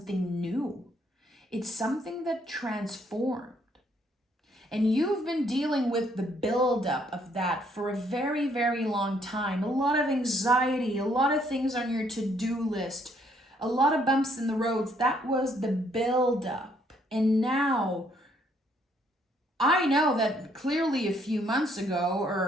new. It's something that transformed. And you've been dealing with the buildup of that for a very, very long time. A lot of anxiety, a lot of things on your to-do list, a lot of bumps in the roads. That was the buildup. And now, I know that clearly a few months ago,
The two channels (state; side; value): normal; both; correlation 0.68